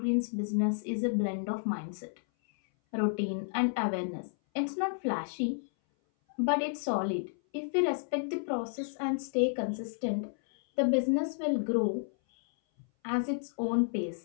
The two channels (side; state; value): right; silent; 57 dB below the other